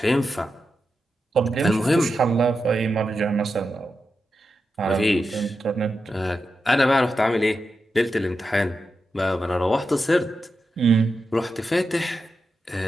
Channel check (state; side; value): normal; both; correlation 0.89